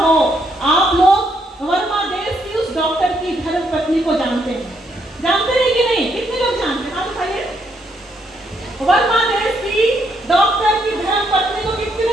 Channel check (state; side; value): normal; both; correlation 0.74